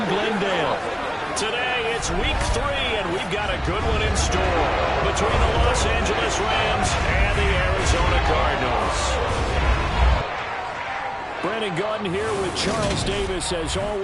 Glendale. Today, it's week 3, and we've got a good one in store between the Los Angeles Rams and the Arizona Cardinals. Brandon Gaudin here with Charles Davis. As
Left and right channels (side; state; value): both; identical; correlation 1.00